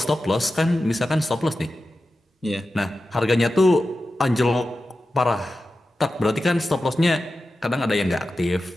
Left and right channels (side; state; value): both; normal; correlation 0.93